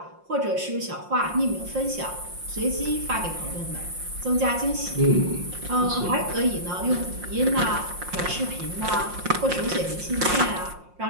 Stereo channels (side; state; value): left; late; 5.6 ms